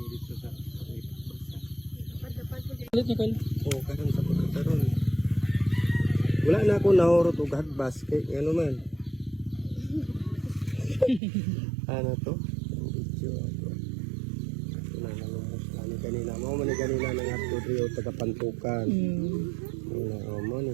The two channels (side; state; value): left; drops out; at 11.2 s